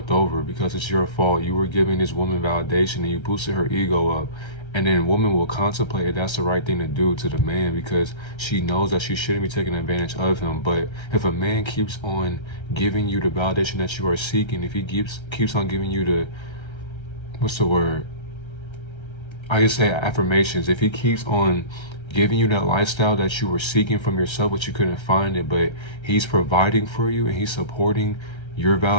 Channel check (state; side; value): late; right; 1.3 ms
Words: over because it's your fault. You were giving this woman validation and you boosted her ego up. And then woman will contemplate if that's the right thing to do to the man because she knows that she shouldn't be taking advantage of him. But if a man keeps on giving you the validation that you are seeking, if he keeps on giving you the, what's the word? I just say affirmations. If he keeps on giving you that lifestyle that you were seeking from yourself, but you couldn't find it, but he's providing for you and he's supporting your